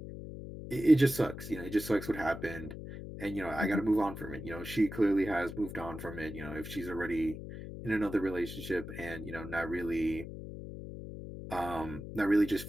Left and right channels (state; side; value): noise; left; hum, 10 dB below the sound